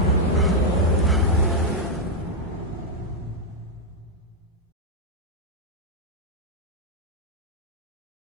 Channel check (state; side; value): normal; both; correlation -0.01